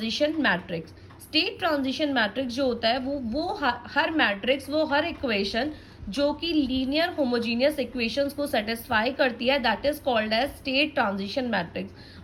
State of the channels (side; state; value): both; identical; correlation 1.00